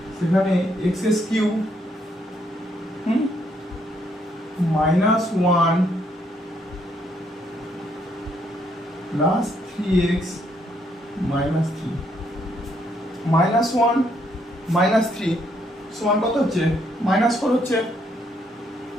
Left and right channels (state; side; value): normal; both; correlation 0.72